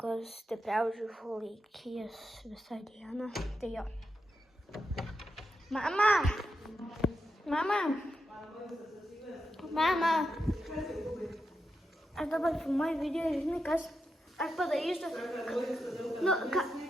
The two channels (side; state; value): both; normal; correlation 0.87